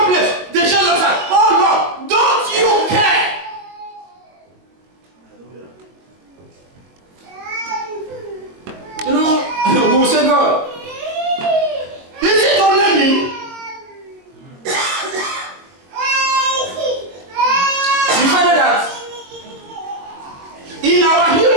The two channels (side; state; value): left; late; 22 ms